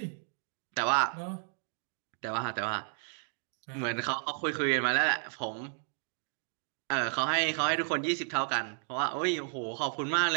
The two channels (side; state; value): left; silent; 56 dB below the other